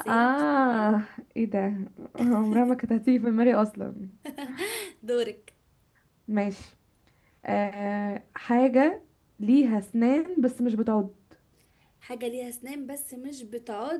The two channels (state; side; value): identical; both; correlation 1.00